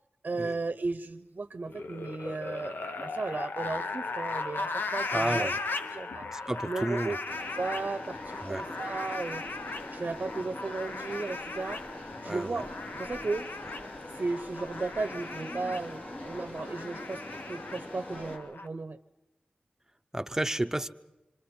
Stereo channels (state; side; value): normal; both; correlation 0.82